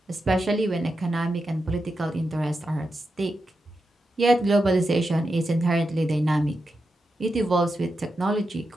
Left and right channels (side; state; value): both; normal; correlation 0.88